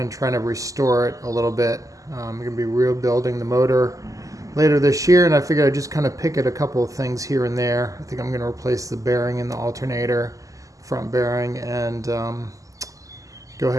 try to restore it a little bit. I'm going to be rebuilding the motor later this year, and I figured I'd just kind of pick at a couple of things here and there. I think I'm going to replace the bearing in the alternator, front bearing, and go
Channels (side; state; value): left; late; 0.16 ms